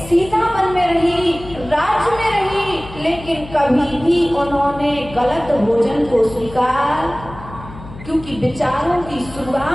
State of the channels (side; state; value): left; noise; hum, 15 dB below the sound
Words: वन में रही, राज्य में रही, लेकिन कभी भी उन्होंने गलत भोजन को स्वीकार, क्योंकि विचारों की